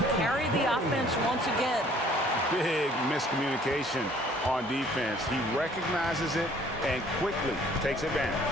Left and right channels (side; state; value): both; normal; correlation 0.57